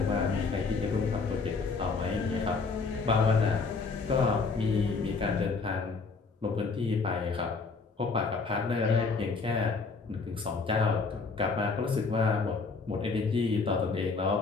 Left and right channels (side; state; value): right; quieter; 4.4 dB